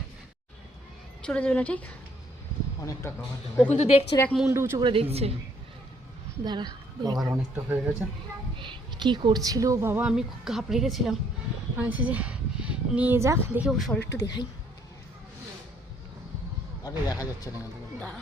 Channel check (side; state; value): both; normal; correlation 0.66